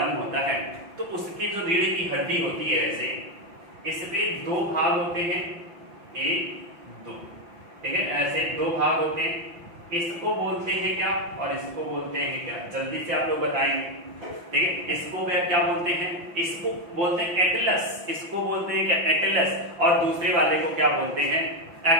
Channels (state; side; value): late; left; 5.8 ms